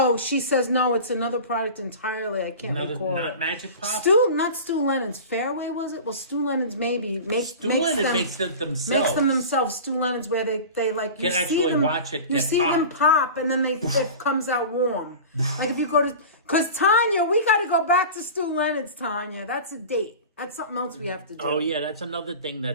she says no. It's another product entirely. I can't recall. Not Magic Pop. Not Stu Lennon's. Fairway was it? Well, Stu Lennon's maybe makes them themselves. Makes them themselves. Stu Lennon's where they like you can see actually them, watch it. You see them pop, and then it comes out warm. Like if you go to, because Tanya, we got to go back to Stu Lennon's. Tanya, that's a date. That's something else we have to do. Oh, yeah, that's another thing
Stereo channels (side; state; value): both; inverted; correlation -0.34